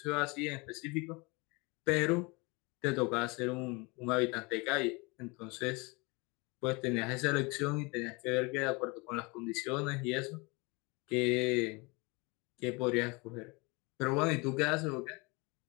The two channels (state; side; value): quieter; right; 27.5 dB